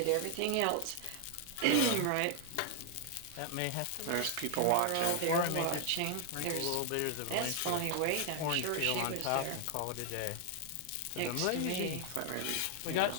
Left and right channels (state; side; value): different; both; correlation 0.00